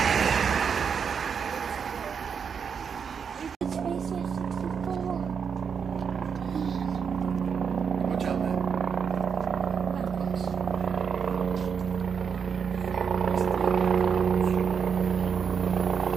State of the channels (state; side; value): quieter; left; 6.6 dB